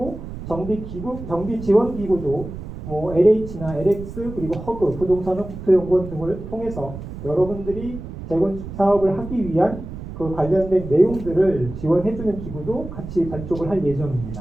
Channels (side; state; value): right; noise; rumble, 10 dB below the sound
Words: 정비 지원 기구도 뭐 LH나 LX 그리고 허그, 부동산은 국토연구원 등을 통해서 여러분들이 재건축 사업을 하기 위한 그 관련된 내용들을 지원해주는 기구도 같이 발족을 할